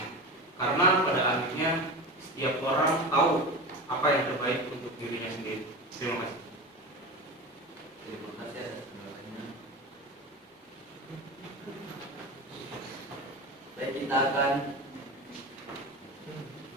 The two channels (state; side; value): normal; both; correlation 0.27